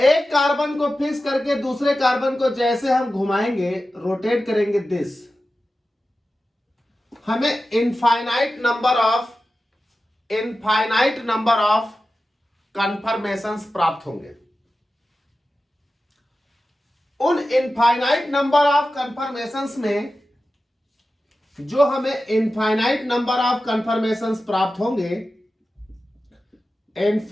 कार्बन को फिक्स करके दूसरे कार्बन को जैसे हम घुमाएंगे, रोटेट करेंगे दिस, हमें इनफाइनाइट नंबर ऑफ कन्फर्मेशंस प्राप्त होंगे। उन इनफाइनाइट नंबर ऑफ कन्फर्मेशंस में जो हमें इनफाइनाइट नंबर ऑफ कन्फर्मेशंस प्राप्त होंगे,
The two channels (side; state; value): both; normal; correlation 0.94